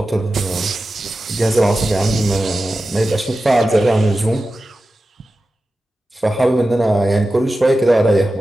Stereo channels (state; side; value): normal; both; correlation 0.94